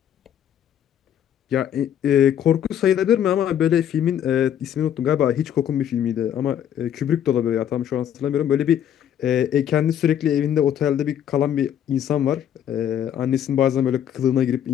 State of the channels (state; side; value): quieter; right; 9.8 dB